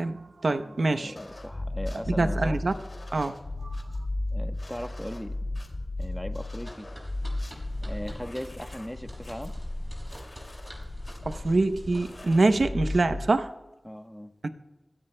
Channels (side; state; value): both; normal; correlation 0.97